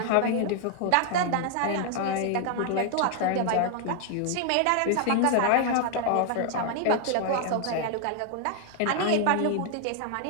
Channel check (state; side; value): different; both; correlation 0.00